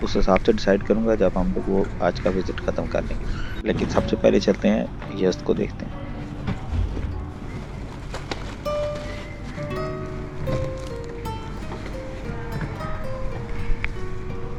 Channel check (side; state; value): both; identical; correlation 1.00